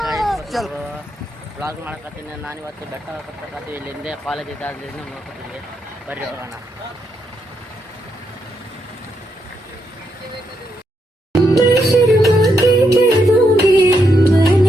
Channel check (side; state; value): both; normal; correlation 0.80